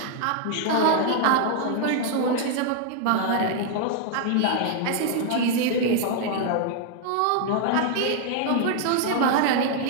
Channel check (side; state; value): both; different; correlation 0.00